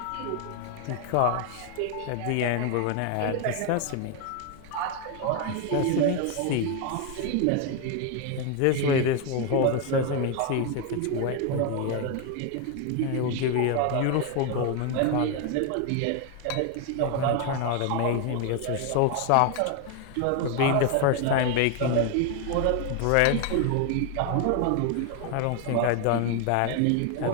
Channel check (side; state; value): both; different; correlation 0.01